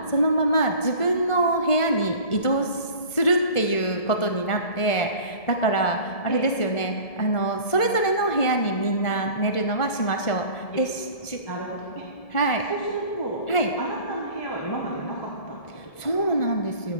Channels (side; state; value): right; late; 1.5 ms